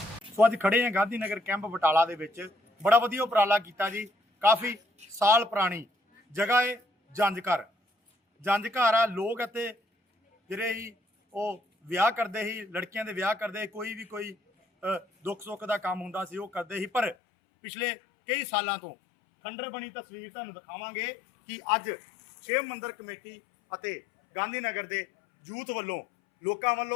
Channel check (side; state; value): right; drops out; at 17.2 s